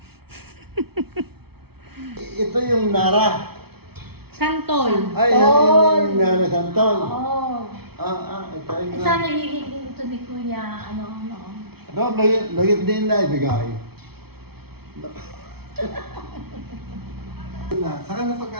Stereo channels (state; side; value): late; left; 0.96 ms